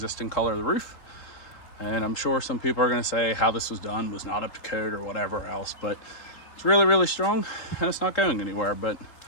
color of the roof. And I'm sure some people are going to say how this was done was not up to code or whatever else, but it's really, really strong and it's not going anywhere. But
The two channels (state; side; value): late; right; 3.8 ms